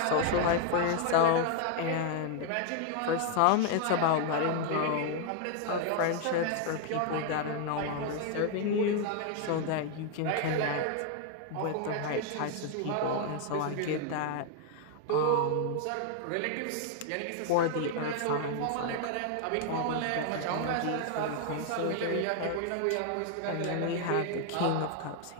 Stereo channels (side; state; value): both; different; correlation 0.00